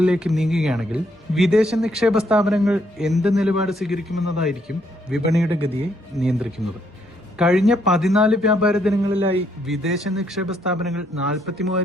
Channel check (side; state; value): both; normal; correlation 0.72